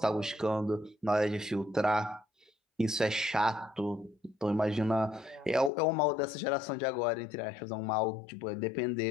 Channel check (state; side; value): drops out; right; at 5.7 s